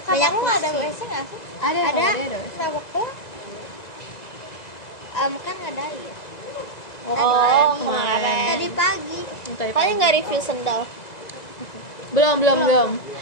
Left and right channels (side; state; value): right; late; 2.0 ms